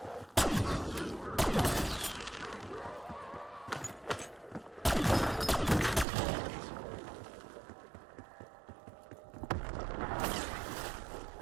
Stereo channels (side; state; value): left; drops out; at 6.1 s